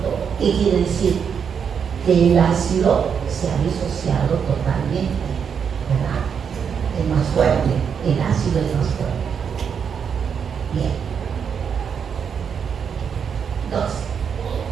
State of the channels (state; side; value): quieter; left; 7.0 dB